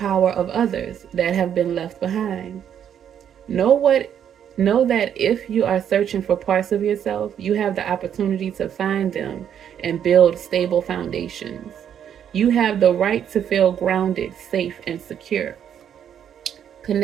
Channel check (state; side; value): quieter; left; 9.1 dB